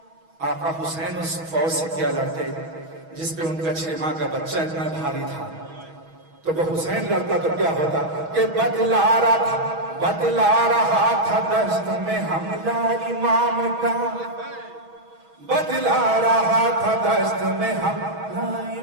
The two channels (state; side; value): late; left; 6.2 ms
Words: آقا حسین اس فوج سے کیا لڑتے جس پہ ان کا 6 ماہ کا بچہ اتنا بھاری تھا, تو وہ حسین لڑتا تو کیا ہوتا کہ بتلا رہا تھا دست میں حملہ امام کا, بتلا رہا تھا دست میں حملہ